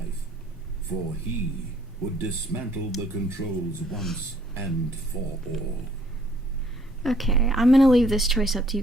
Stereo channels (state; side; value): normal; both; correlation 0.63